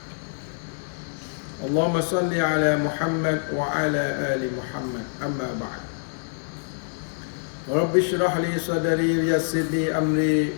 اللهم صل على محمد وعلى آل محمد أما بعد رب اشرح لي صدري ويسر لي أمري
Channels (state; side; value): silent; right; digital silence